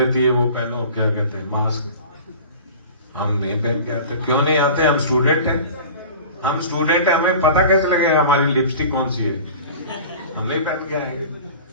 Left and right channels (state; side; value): inverted; both; correlation -0.39